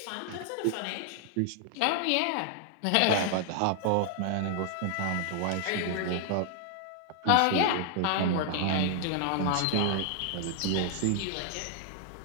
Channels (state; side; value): different; both; correlation 0.00